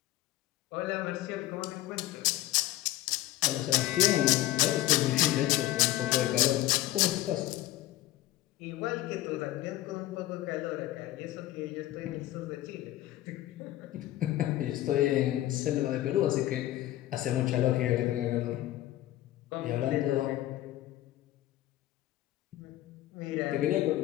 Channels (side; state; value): right; quieter; 15.1 dB